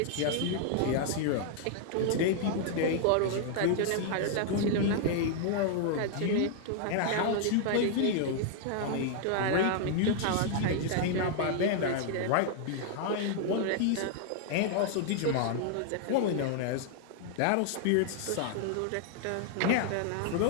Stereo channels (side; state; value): both; different; correlation 0.00